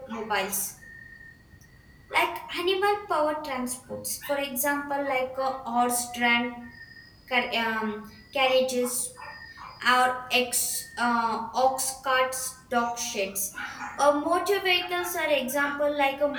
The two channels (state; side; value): identical; both; correlation 1.00